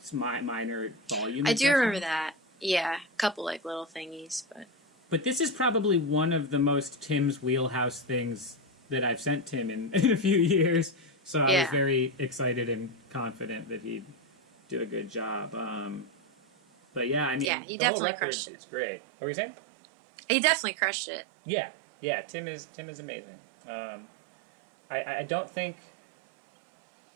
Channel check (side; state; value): left; drops out; at 17.5 s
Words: minor volume. I do remember that. Yeah, a couple, like, little thingies, but... But this is probably one of the most Tim's wheelhouse things that I've sent Tim in a few years. So I was very excited and confident that he'd do a good job. But yeah, I mean, he definitely crushed it. It's great. What were you saying? He definitely crushed it. Yeah. Tim is amazing. I don't think.